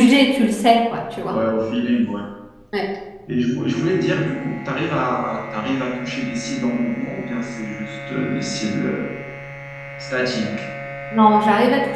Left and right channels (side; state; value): both; identical; correlation 1.00